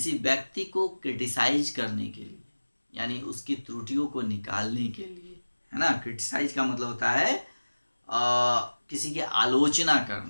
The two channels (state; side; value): inverted; both; correlation -1.00